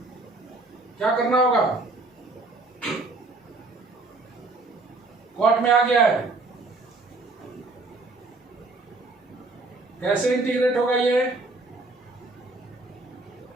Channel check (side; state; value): left; quieter; 3.2 dB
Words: क्या करना होगा, कॉट में आ गया है, कैसे इंटीग्रेट होगा ये,